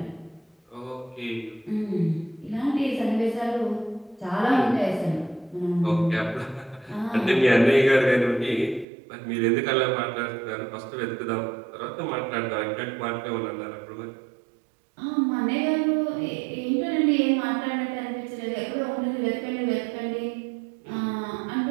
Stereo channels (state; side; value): drops out; left; at 8.8 s